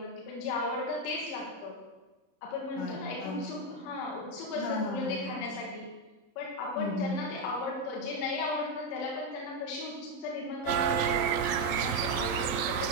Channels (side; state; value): right; late; 27 ms